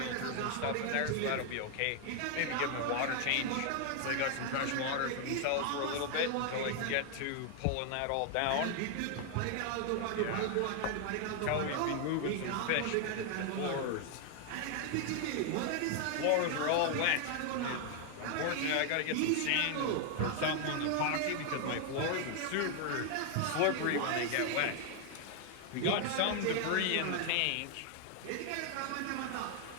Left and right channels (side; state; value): both; different; correlation 0.01